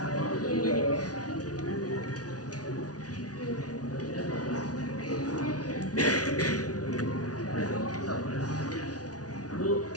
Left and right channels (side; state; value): right; late; 0.68 ms